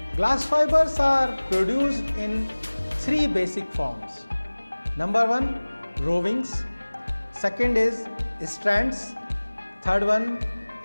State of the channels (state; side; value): inverted; both; correlation -1.00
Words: Glass fibers are produced in three basic forms. Number one, rovings. Second is strands. Third one